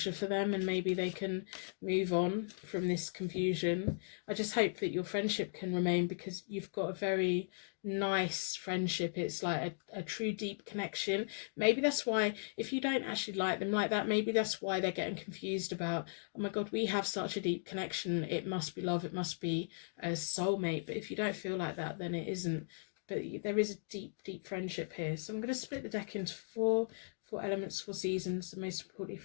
for them, and maybe they can move on from this confusion. I just hope that your friendship can remain, because you've got a very nice friendship. It's like a true deep connection. Maybe that's why, if you don't actually like them like that, maybe that's why they're getting confused about, oh my god, we have such a deep connection, it must be love, it must be a soulmate. But if you don't feel like that, then it isn't. But there is a deep friendship here. So I'm going to split the deck into four elements, 4 seasons, and most importantly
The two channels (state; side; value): silent; right; digital silence